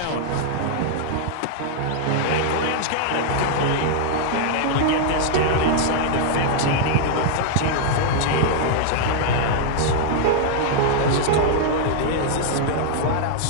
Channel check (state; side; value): different; both; correlation -0.01